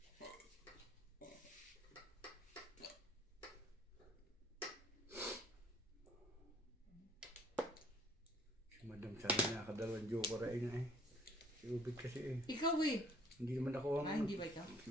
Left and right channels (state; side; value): normal; both; correlation 0.59